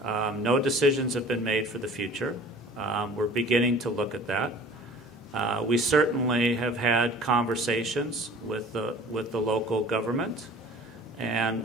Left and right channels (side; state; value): both; normal; correlation 0.46